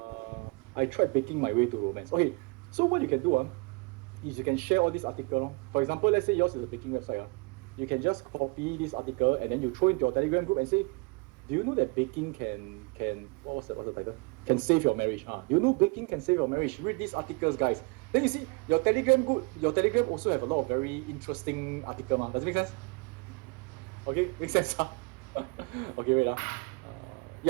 I tried baking my way to romance. Okay, so what you can do is you can share all these articles. For example, let's say yours is a baking website. You can just copy this article and then you throw into your Telegram group and say, do you know that baking can what's the title? Can save your marriage? You know baking can save your marriage. Read these articles, guys. Then you see your Telegram also have a lot of very interesting articles. Does it make sense? Okay, makes sense. Okay, wait.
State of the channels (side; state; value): left; quieter; 29.1 dB